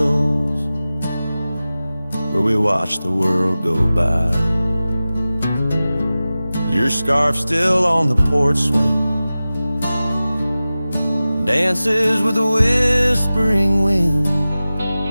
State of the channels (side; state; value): both; inverted; correlation -0.96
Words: where we watch the world go by. Your scarf still on the porch swing, dances with the whispering wind,